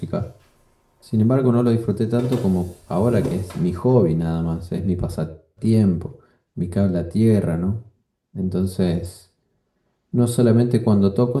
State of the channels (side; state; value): both; identical; correlation 1.00